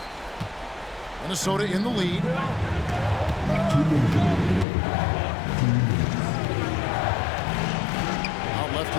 Minnesota in the lead. Out left to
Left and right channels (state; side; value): drops out; right; at 4.7 s